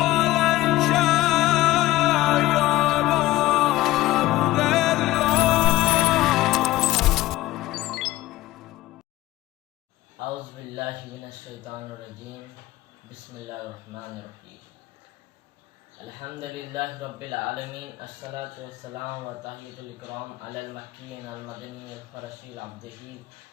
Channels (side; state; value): right; quieter; 17.0 dB